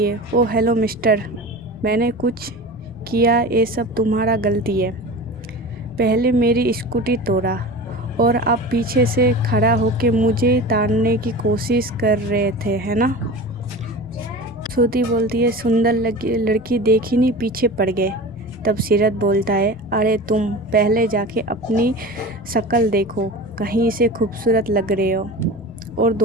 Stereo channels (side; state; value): left; noise; rumble, 22 dB below the sound